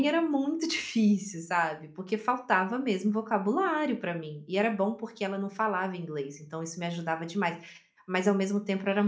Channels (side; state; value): both; identical; correlation 1.00